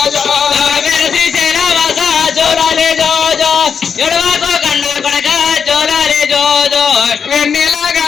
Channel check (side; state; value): right; quieter; 6.6 dB